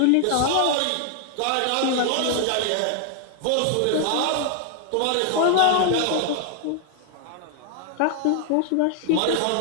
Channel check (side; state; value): both; different; correlation 0.00